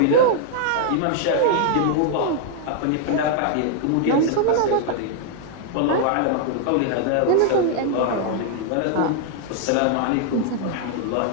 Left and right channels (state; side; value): different; both; correlation 0.00